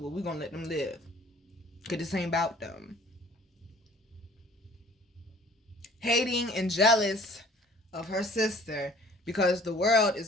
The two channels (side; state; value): both; normal; correlation 0.52